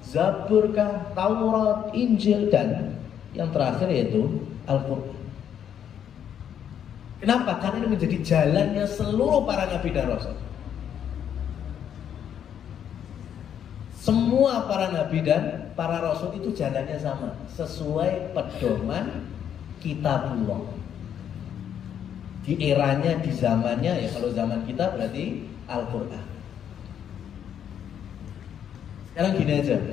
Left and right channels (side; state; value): right; quieter; 9.1 dB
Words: Zabur kah, Taurat, Injil, dan yang terakhir yaitu Al-Quran. Kenapa? Karena ini menjadi jalannya seluruh para nabi dan rasul. Semua para nabi dan para rasul itu jalannya sama, sesuai pedoman kitabullah. Di eranya, di zamannya, ya kalau zaman kita berarti Al-Quran. Sekarang gini aja,